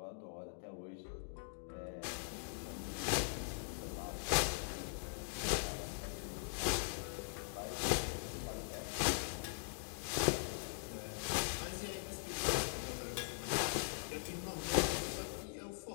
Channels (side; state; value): right; silent; digital silence